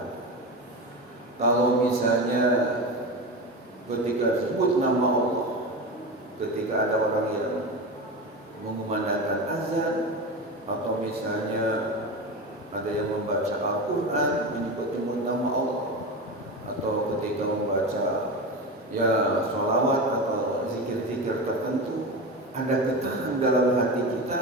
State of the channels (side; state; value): both; normal; correlation 0.23